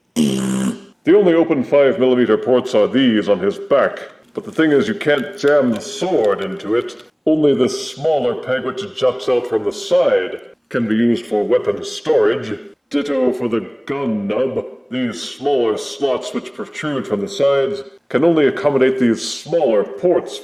The only open 5mm ports are these on his back, but the thing is you can't jam the sword into it, only this smaller peg which juts out from the side. can be used for weapon storage. Ditto for the gun nub. These smaller slots which protrude from the sides can only accommodate these smaller ports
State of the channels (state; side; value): identical; both; correlation 1.00